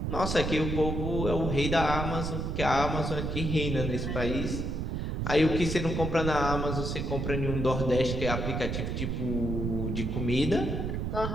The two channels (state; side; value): noise; right; rumble, 2 dB below the sound